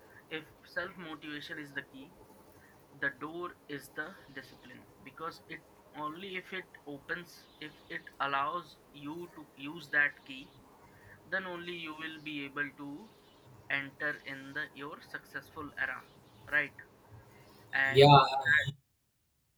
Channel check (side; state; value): both; identical; correlation 1.00